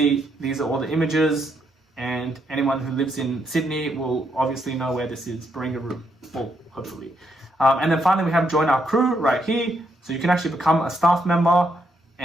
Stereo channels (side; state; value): both; normal; correlation 0.76